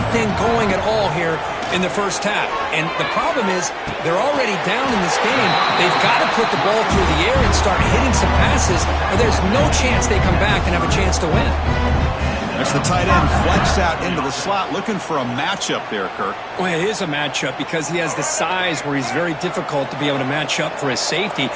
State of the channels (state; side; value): identical; both; correlation 1.00